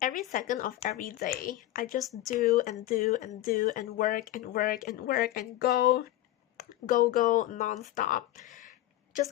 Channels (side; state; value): right; quieter; 14.7 dB